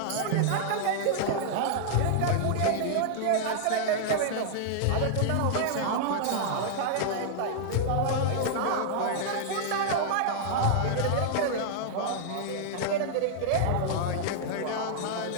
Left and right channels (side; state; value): both; different; correlation -0.01